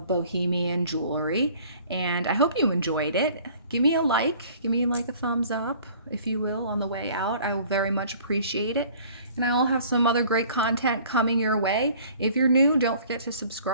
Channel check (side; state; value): both; inverted; correlation -0.52